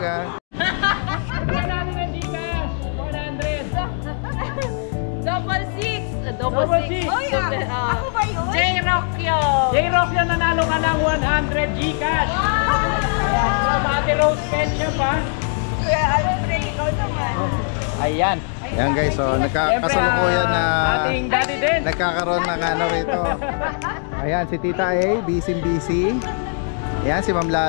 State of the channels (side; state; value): right; silent; 61 dB below the other